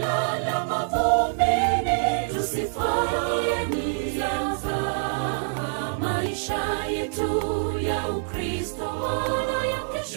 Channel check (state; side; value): silent; left; digital silence